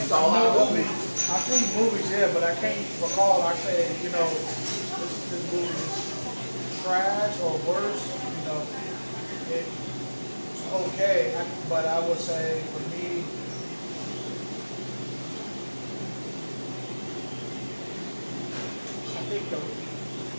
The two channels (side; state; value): both; inverted; correlation -1.00